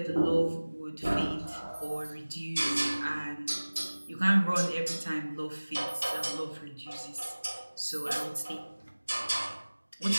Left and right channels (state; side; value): inverted; both; correlation -1.00